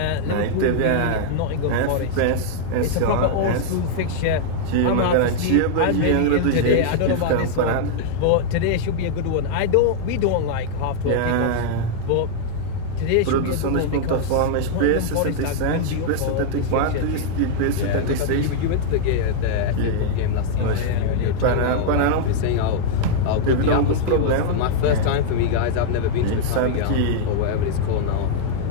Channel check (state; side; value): different; both; correlation -0.01